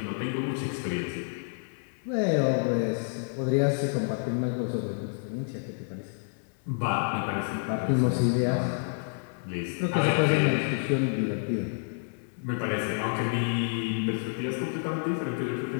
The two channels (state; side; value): silent; right; digital silence